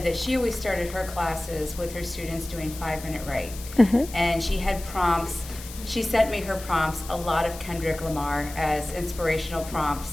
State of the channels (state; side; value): noise; left; hiss, 14 dB below the sound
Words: that she always started her classes with her students doing 5-minute write. And she had prompts. She sent me her prompts, a lot of Kendrick Lamar as inspirational